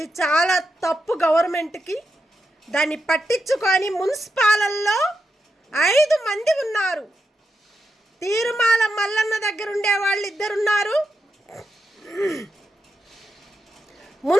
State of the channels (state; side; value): normal; both; correlation 0.86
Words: చాలా తప్పు. గవర్నమెంట్కి దాన్ని పట్టించుకొని మున్సిపాలల్లో 5 మంది ఉన్నారు. తీరుమాల మల్లన్న దగ్గర ఉండే వాళ్ళు 2 ఉన్నారు,